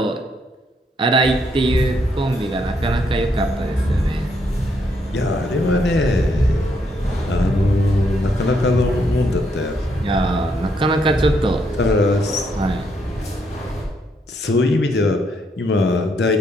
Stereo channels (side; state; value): both; normal; correlation 0.74